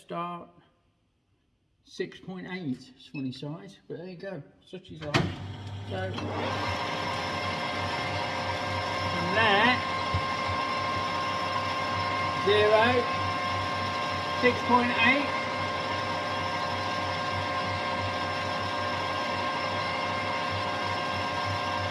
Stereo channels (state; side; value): identical; both; correlation 1.00